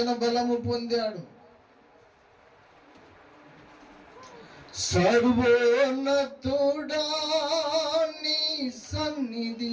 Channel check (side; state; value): both; identical; correlation 1.00